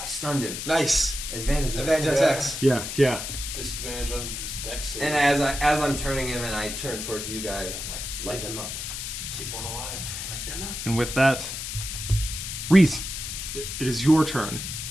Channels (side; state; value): left; noise; hiss, 6 dB below the sound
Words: I stunned him. Nice. Advantage attacks. Yeah. Disadvantage on this dex save. And as I'm turning him, and I turn towards you guys, I'm like, light them up. Keep one alive. Light them up. And with that, Reese, it is your turn.